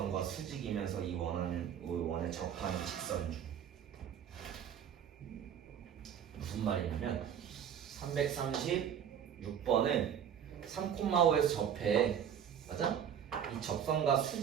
수직이면서 이 원에 접하는 직선 중 무슨 말이냐면 336번은 3,5에서 접해. 맞아? 이 접선과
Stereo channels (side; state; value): left; quieter; 8.8 dB